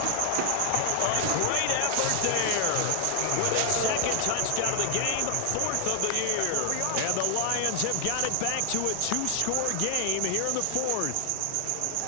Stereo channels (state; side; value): different; both; correlation 0.00